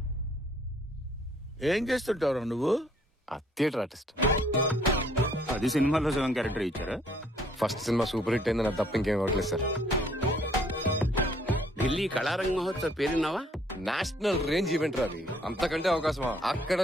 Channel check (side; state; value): both; normal; correlation 0.63